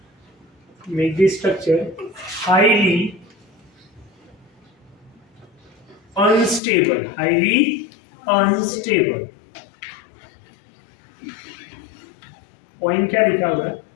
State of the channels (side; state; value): right; drops out; at 6.6 s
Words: highly unstable। पॉइंट क्या लिखा हुआ है,